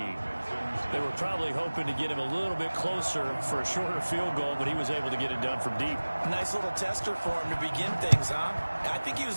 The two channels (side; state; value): both; inverted; correlation -1.00